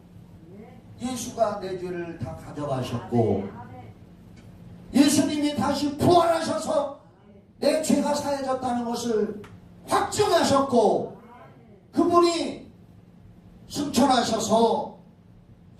예수가 내 죄를 다 가져가셨고 예수님이 다시 부활하셔서 내 죄가 사해졌다는 것을 확증하셨고 그분이 승천하셔서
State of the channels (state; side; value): identical; both; correlation 1.00